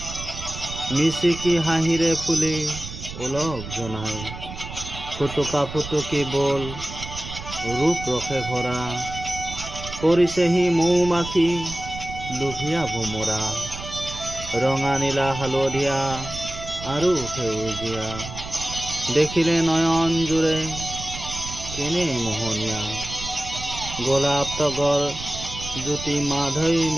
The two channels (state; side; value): noise; right; rumble, 10 dB below the sound